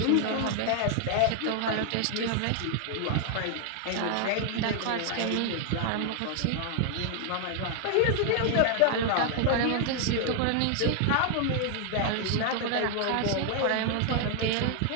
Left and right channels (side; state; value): both; different; correlation 0.00